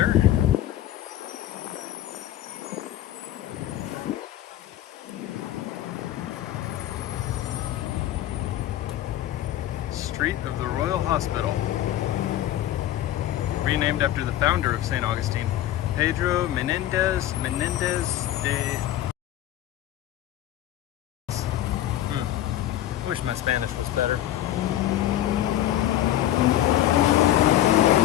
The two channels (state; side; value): quieter; right; 13.1 dB